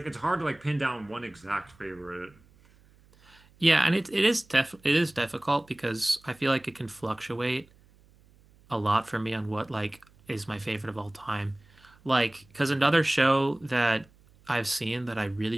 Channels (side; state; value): right; noise; hum, 29 dB below the sound